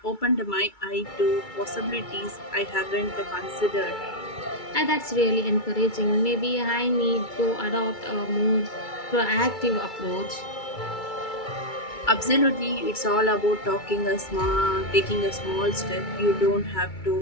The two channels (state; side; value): late; right; 2.3 ms